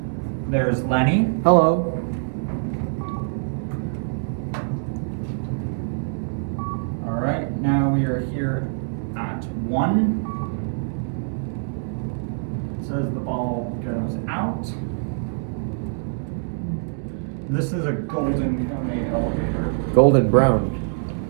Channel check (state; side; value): silent; left; digital silence